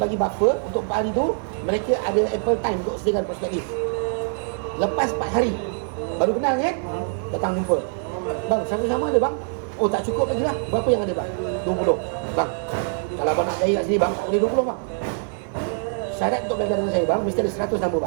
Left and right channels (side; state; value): left; silent; 63 dB below the other